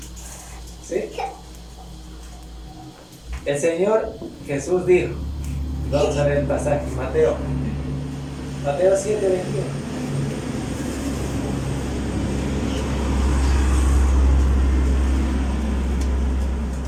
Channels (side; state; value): both; identical; correlation 1.00